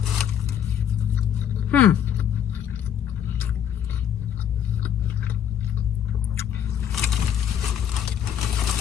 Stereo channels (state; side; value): quieter; right; 9.3 dB